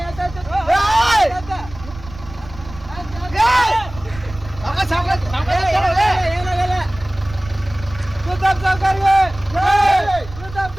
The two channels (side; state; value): right; noise; rumble, 15 dB below the sound